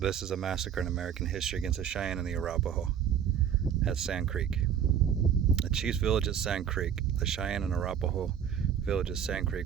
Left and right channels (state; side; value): quieter; left; 8.6 dB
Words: a massacre in American history against the Cheyenne and the Arapaho at Sand Creek. The chief's village at Sand Creek. The Cheyenne and Arapaho village at Sand